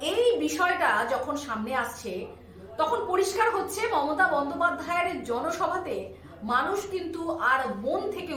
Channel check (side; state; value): both; identical; correlation 1.00